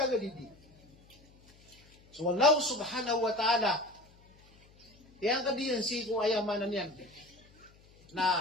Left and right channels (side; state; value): left; noise; hum, 28 dB below the sound